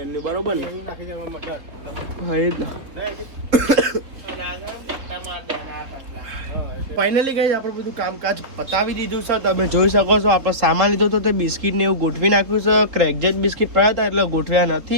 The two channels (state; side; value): late; left; 3.6 ms